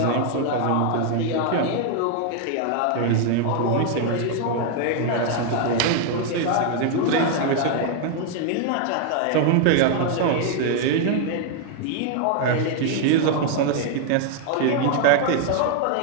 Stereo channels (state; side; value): different; both; correlation 0.00